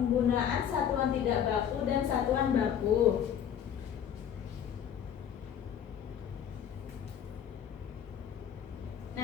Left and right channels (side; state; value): right; quieter; 9.0 dB